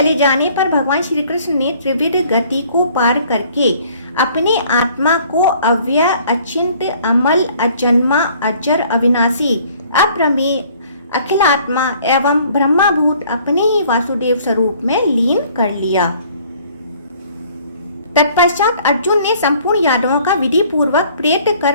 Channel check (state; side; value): inverted; both; correlation -0.57